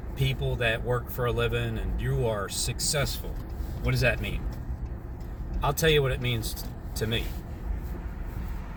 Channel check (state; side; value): identical; both; correlation 1.00